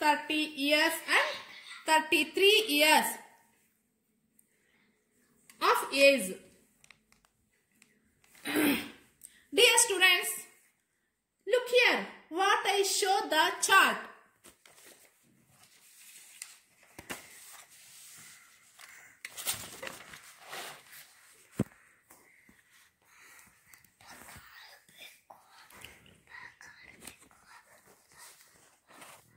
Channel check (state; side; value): identical; both; correlation 1.00